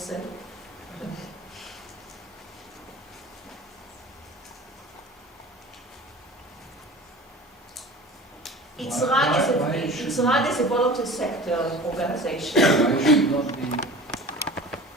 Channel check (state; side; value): normal; both; correlation 0.39